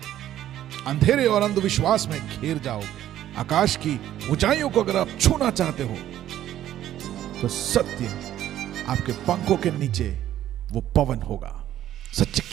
अंधेरे और अंधविश्वास में घिर जाओगे। आकाश की ऊंचाइयों को अगर आप छूना चाहते हो तो सत्य आपके पंखों के नीचे वो पवन होगा। सत्य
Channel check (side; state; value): left; quieter; 12.2 dB